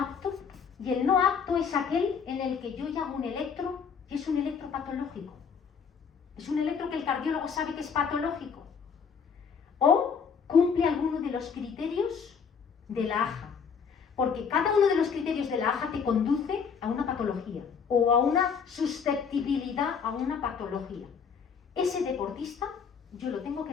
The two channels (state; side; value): quieter; right; 6.3 dB